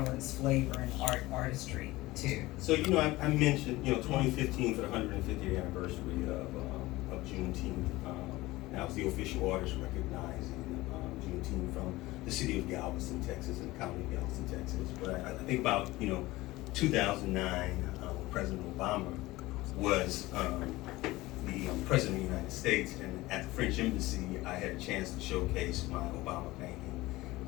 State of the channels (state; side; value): quieter; right; 19.1 dB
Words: flavor and artistry to. So, I mentioned, 2015 for the 150th anniversary of Juneteenth. That was the official artist recognizing Juneteenth from the city of Galveston, Texas, and the county of Galveston, Texas. But I think about, 2009, when President Obama was the President of the United States, and at the French Embassy, I had a chance to showcase my Obama painting